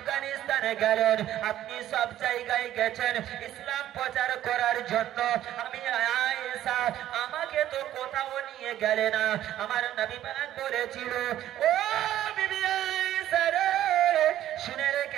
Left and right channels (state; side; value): quieter; left; 12.6 dB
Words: গেলেন, আপনি সব জায়গায় গেছেন ইসলাম প্রচার করার জন্য। আমি আয়েশা, আমাকে তো কোথাও নিয়ে গেলে না। আমার নবী পাক বলেছিল, ও বিবি আয়েশা রে, শুনে